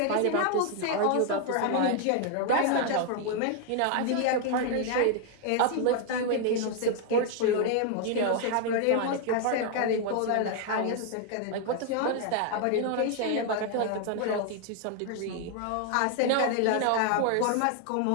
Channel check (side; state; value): both; different; correlation 0.00